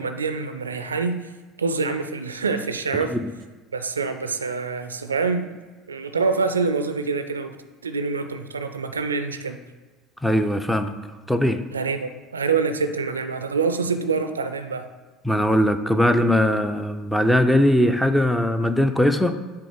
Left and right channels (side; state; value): both; normal; correlation 0.37